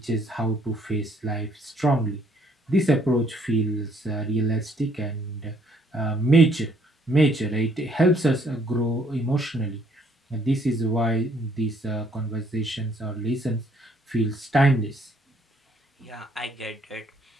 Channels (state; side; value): normal; both; correlation 0.65